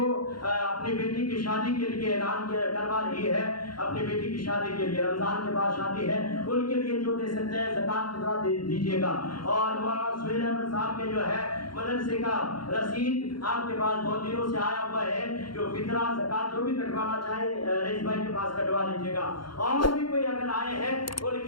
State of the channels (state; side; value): late; right; 0.72 ms